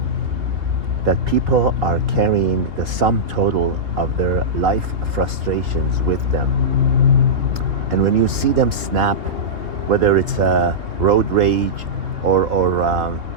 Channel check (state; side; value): late; left; 3.3 ms